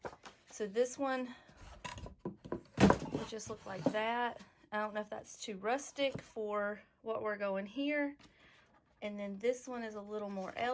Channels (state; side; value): identical; both; correlation 1.00